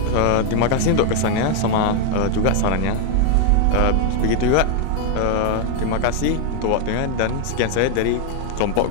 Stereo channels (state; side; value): different; both; correlation 0.00